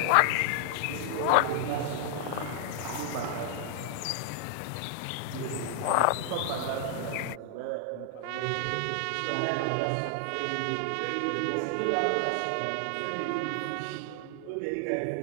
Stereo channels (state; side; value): different; both; correlation 0.00